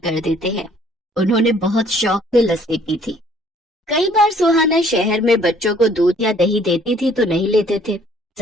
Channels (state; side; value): normal; both; correlation 0.60